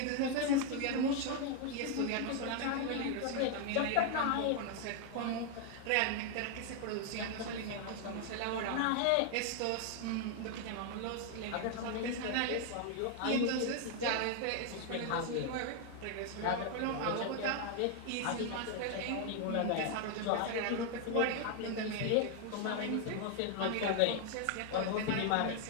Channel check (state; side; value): different; both; correlation 0.00